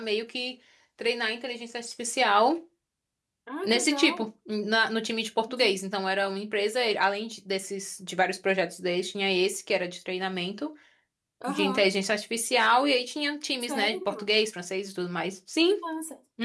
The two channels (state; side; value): identical; both; correlation 1.00